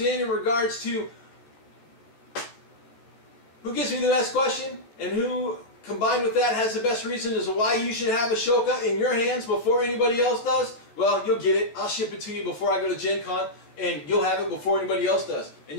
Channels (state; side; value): late; right; 13 ms